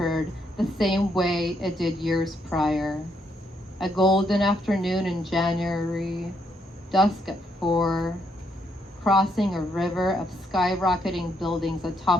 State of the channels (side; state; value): both; normal; correlation 0.75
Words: the same way it did years prior. A golden afternoon in January, dusk at 4, crossing a river of skyrocketing buildings